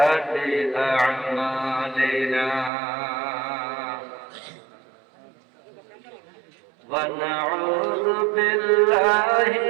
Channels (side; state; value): left; drops out; at 2.7 s